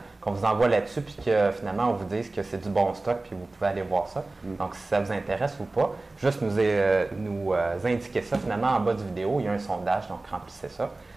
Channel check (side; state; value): left; quieter; 3.1 dB